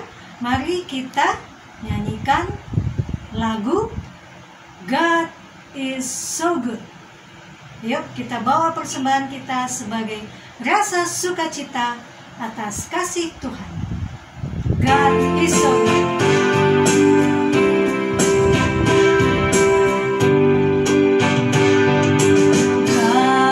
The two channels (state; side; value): identical; both; correlation 1.00